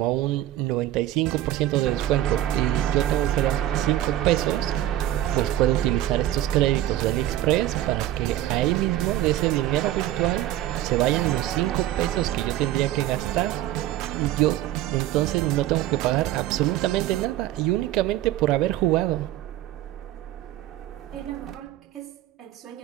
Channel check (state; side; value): quieter; left; 13.5 dB